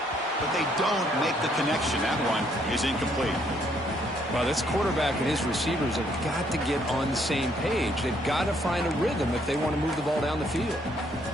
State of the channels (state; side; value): normal; both; correlation 0.69